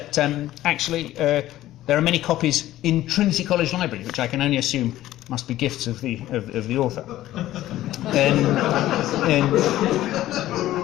actually there are many copies in Trinity College Library, which I can only assume must be gifts of the author.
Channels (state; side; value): quieter; right; 14.5 dB